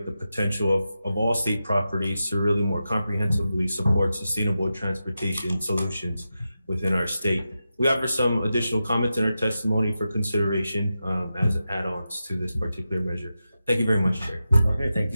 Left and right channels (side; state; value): both; inverted; correlation -0.90